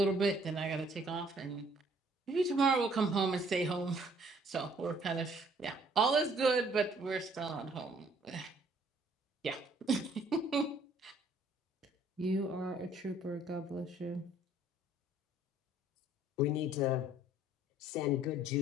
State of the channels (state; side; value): normal; both; correlation 0.60